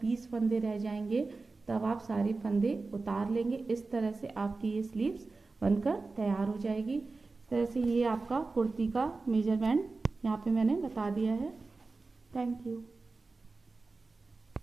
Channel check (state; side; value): quieter; left; 3.8 dB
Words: 20 फंदे रह जाएंगे तब आप सारे फंदे उतार लेंगे। इस तरह से आपकी ये स्लीव्स बनकर तैयार हो जाएगी। इस तरह से ये आपका कुर्ती का मेजरमेंट यहाँ पे मैंने बता दिया है। Thank you.